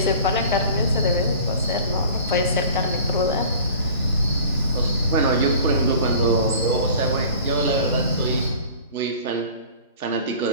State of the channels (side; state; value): both; inverted; correlation -0.43